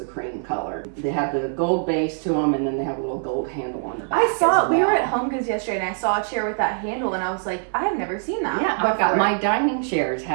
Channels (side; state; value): left; silent; 63 dB below the other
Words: cream color. They have the gold base to them, and then they have a little gold handle on the back. I saw, we were at Home Goods yesterday, and I saw a chair with that handle, and I was like, I have never seen that. Yeah, I've got my dining chairs